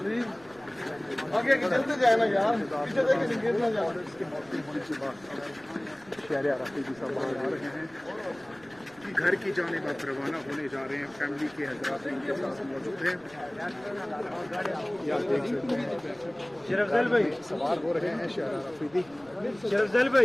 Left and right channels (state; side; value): noise; right; rumble, 26 dB below the sound